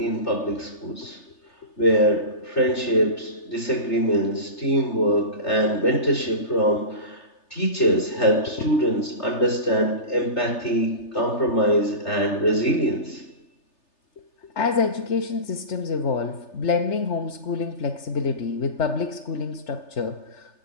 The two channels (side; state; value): right; late; 3.3 ms